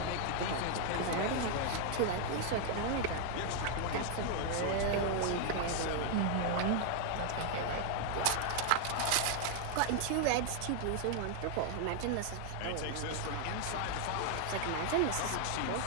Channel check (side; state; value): both; different; correlation 0.00